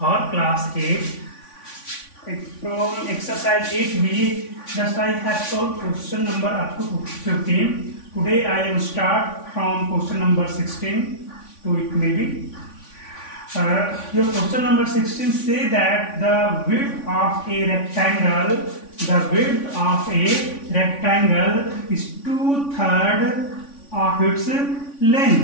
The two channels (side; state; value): right; late; 3.5 ms